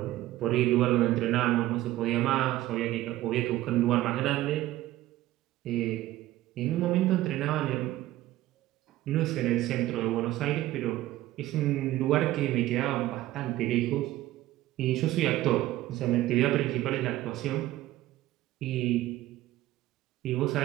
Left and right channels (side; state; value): left; quieter; 15.4 dB